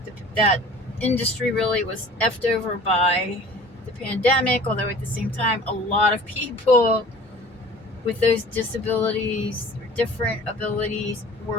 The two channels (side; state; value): both; normal; correlation 0.45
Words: That industry really was effed over by the pandemic, although at the same time, a lot of people with those disabilities or different abilities